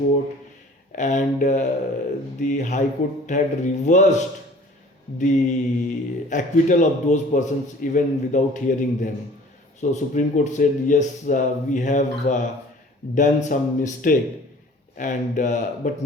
and the High Court had reversed the acquittal of those persons even without hearing them. So Supreme Court said, yes, we have done some mistake, and but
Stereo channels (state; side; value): normal; both; correlation 0.49